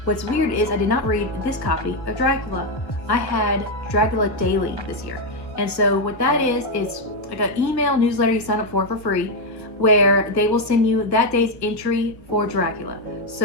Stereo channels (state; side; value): late; right; 1.4 ms